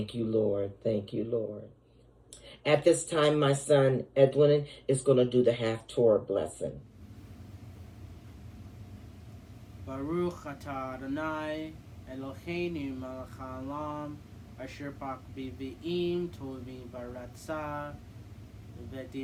you, Lord. Thank you, Lord. At this time, my son Edwin is going to do the half-Torah blessing. Baruch atah Adonai Eloheinu melech haolam asher bak b'vi'im tovim baratzah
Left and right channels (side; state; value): both; identical; correlation 1.00